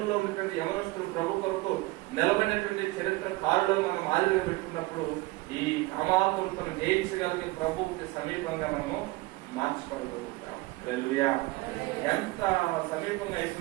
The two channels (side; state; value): left; quieter; 21.2 dB